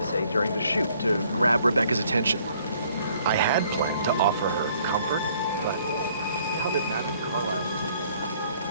say during the shoot to grab Rebecca's attention. I had planned to offer her comfort, but now that Madame Carlisle is in after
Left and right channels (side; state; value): both; inverted; correlation -0.62